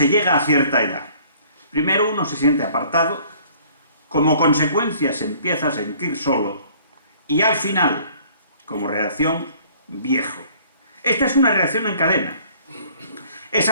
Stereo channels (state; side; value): inverted; both; correlation -0.55